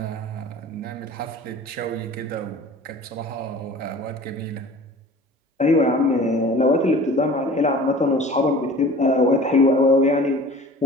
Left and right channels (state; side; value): normal; both; correlation 0.43